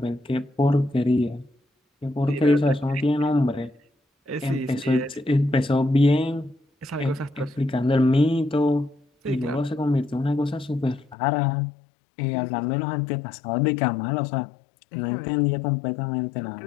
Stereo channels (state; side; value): drops out; right; at 11.2 s